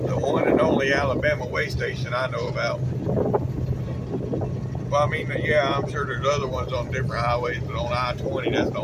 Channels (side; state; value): both; identical; correlation 1.00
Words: one and only Alabama way station I know about. Well, I mean, yeah, I'm sure there's other ones on different highways, but on I-20, that's the